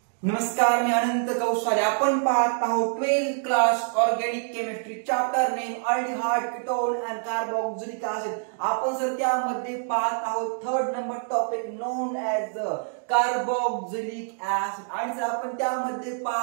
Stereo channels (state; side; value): silent; left; digital silence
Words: नमस्कार, मी अनंत कौशल्य. आपण पाहत आहोत 12th class organic chemistry chapter name aldehyde, ketone and carboxylic acid. आपण सर त्यामध्ये पाहत आहोत third number topic non as carboxylic acid. आणि सर आपण त्यामध्ये